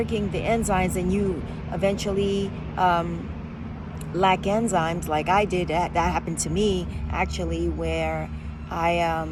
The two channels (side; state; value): both; identical; correlation 1.00